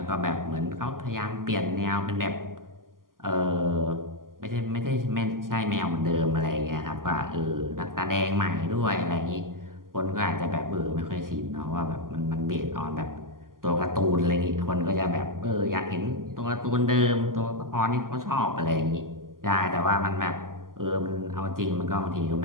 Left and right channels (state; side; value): late; left; 0.91 ms